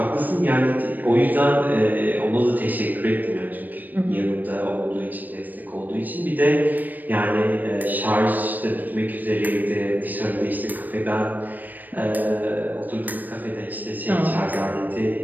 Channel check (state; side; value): late; left; 0.087 ms